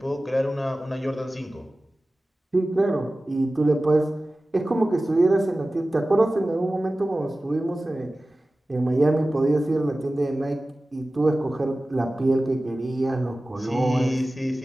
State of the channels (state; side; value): normal; both; correlation 0.96